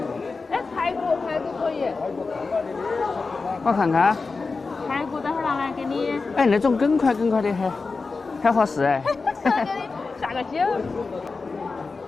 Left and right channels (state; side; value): quieter; right; 4.2 dB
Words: 哎，排骨可以。我看看。排骨等会儿拿来给你。哎，那种梗块的很合适哎。给你下个酒。